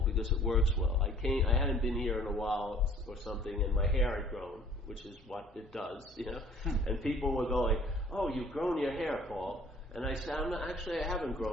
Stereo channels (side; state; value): both; normal; correlation 0.54